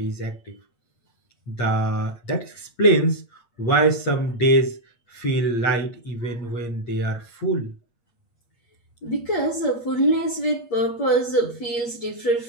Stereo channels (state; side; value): late; right; 8.5 ms